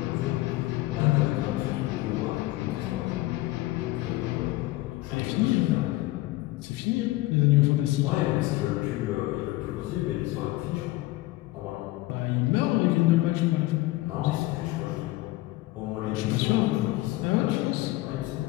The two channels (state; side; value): quieter; right; 18.6 dB